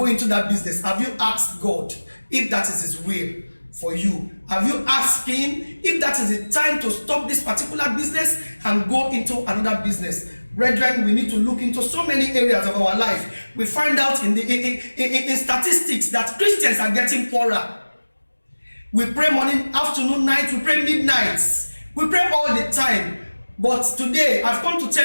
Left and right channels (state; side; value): inverted; both; correlation -1.00